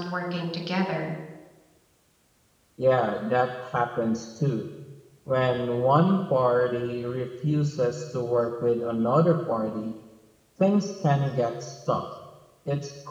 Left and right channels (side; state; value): both; identical; correlation 1.00